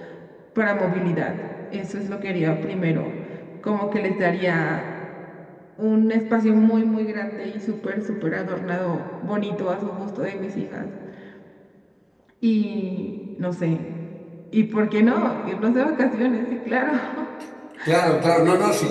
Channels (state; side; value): identical; both; correlation 1.00